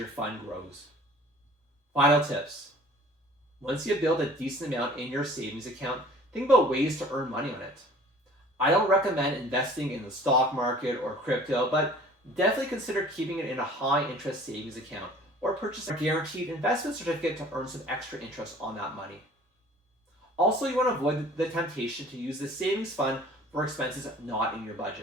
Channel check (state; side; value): normal; both; correlation 0.49